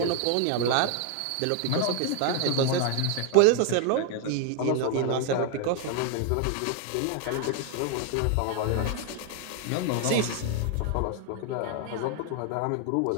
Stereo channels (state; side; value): different; both; correlation 0.00